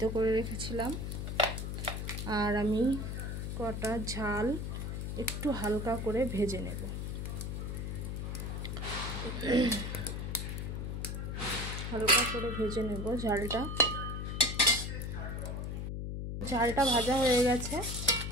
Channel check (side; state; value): left; noise; hum, 4 dB below the sound